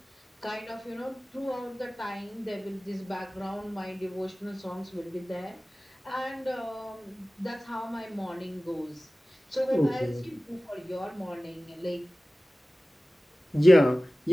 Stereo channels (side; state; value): both; normal; correlation 0.97